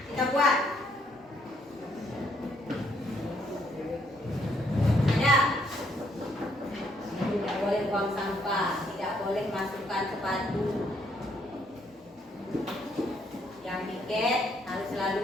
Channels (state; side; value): normal; both; correlation 0.70